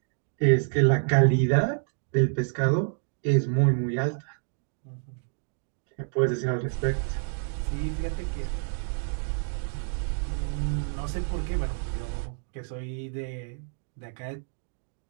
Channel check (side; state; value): left; silent; digital silence